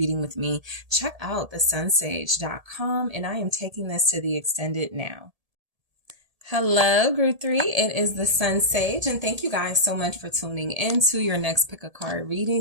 with me, check out TheSunSage.com, and I am taking this to the extended now. Hello, group 3. It is the Sun Sage, and thank you guys so much for tuning in to your next pick a card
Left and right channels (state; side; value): late; left; 1.7 ms